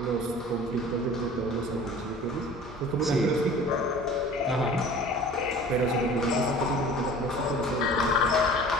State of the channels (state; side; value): normal; both; correlation 0.44